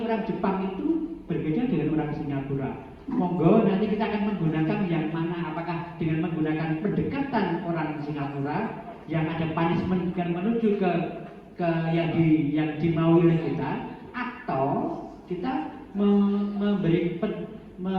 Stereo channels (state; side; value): identical; both; correlation 1.00